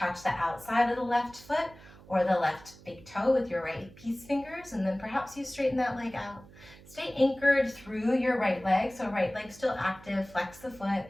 the outside of the left foot or the left big toe with your right peace fingers, and then perhaps you straighten that leg out. Stay anchored through your right leg, so right leg still active, flex the foot,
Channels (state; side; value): noise; right; hum, 21 dB below the sound